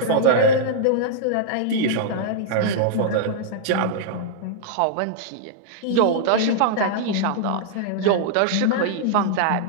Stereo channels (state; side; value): different; both; correlation -0.02